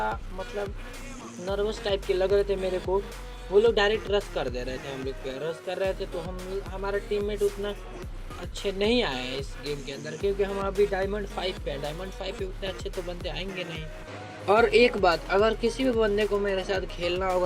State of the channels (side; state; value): both; identical; correlation 1.00